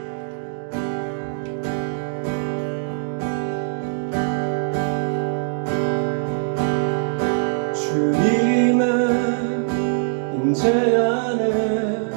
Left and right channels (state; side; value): silent; left; digital silence